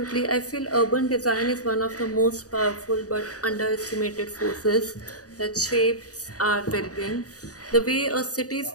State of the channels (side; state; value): right; late; 0.67 ms